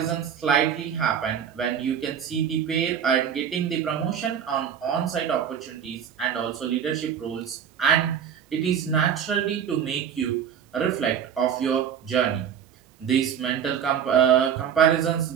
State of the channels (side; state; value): left; quieter; 8.4 dB